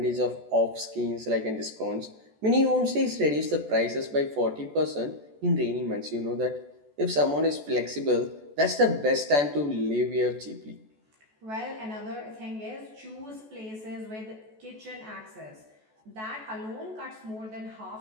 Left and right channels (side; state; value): left; late; 14 ms